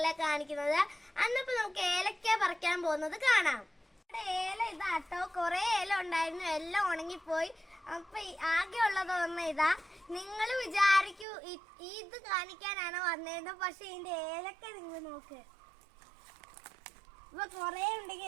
കാണിക്കുന്നത്. അന്നിപ്പോ നമുക്ക് ഏലക്ക പറിക്കാൻ പോകുന്നത് കാണാം. ഏല ഇതാട്ടോ, കുറെ ഏല ഉണ്ടായിരുന്നു, എല്ലാം ഉണങ്ങിപ്പോയി. അപ്പൊ ആകെ ഉള്ളത് ഒന്ന് ഇതാ. നിങ്ങൾ വിചാരിക്കൂ ഇത് കാണിക്കാനാണ് വന്നേന്ന്, പക്ഷെ ഇതിന്റെ ഏലക്ക നിങ്ങൾ നോക്ക്. ഇപ്പൊ കൊറേ ഉണ്ടെങ്കിൽ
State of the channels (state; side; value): drops out; left; at 11.2 s